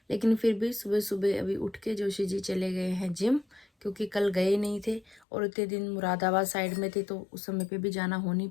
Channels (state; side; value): drops out; right; at 5.2 s